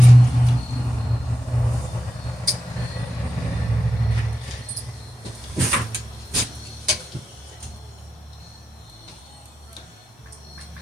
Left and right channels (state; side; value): normal; both; correlation 0.91